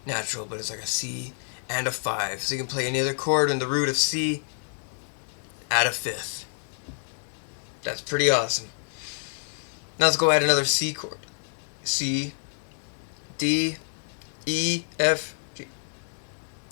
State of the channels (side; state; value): right; silent; digital silence